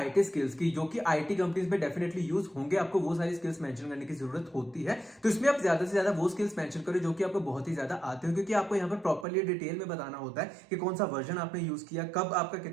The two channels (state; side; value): drops out; left; at 9.2 s